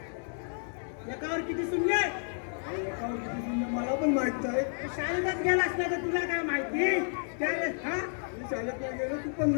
एकावर किती शून्य? आणि एकावर किती शून्य मला पण माहित आहे शाळेत गेला असला तर तुला काय माहिती त्यावेळेस हा मी शाळेत नाही गेलो तू पण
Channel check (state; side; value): silent; right; 57 dB below the other